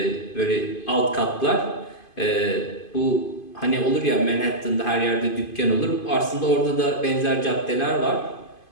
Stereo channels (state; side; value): late; right; 2.5 ms